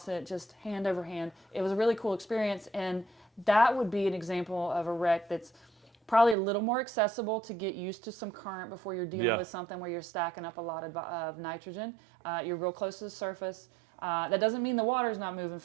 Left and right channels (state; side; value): drops out; left; at 6.4 s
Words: it, just hand over hand. It was a really cool experience. And that would be an example of a wreck that's probably a little more accessible to get used to some current before you're dealing with something where you're stacking up a lot of nitrogen. You're real close to the surface. That doesn't mean the water's not moving